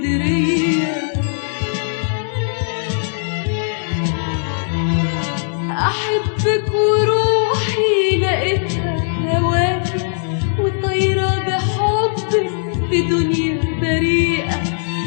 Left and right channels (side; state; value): right; silent; 67 dB below the other